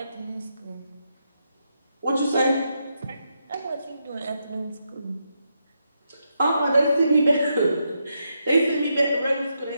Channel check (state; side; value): inverted; both; correlation -0.82